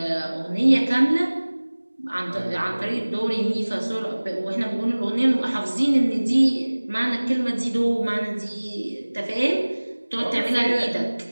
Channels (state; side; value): inverted; both; correlation -1.00